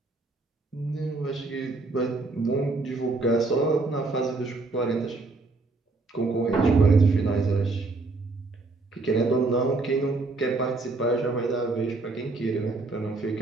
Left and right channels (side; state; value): left; quieter; 3.5 dB